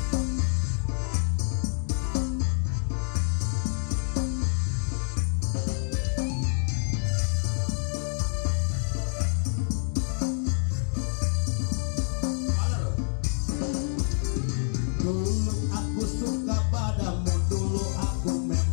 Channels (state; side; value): silent; right; 56 dB below the other